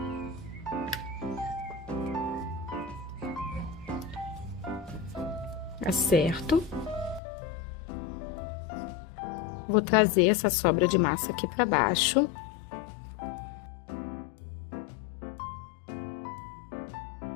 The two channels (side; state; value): right; drops out; at 7.2 s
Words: Acerto. Vou trazer essa sobra de massa aqui para baixo.